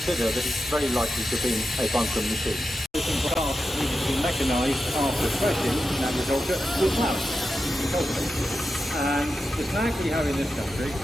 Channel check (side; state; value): both; normal; correlation 0.90